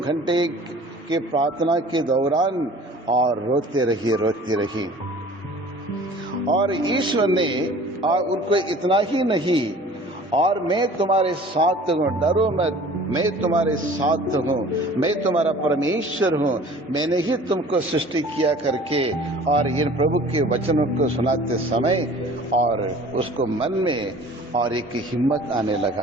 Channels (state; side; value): normal; both; correlation 0.47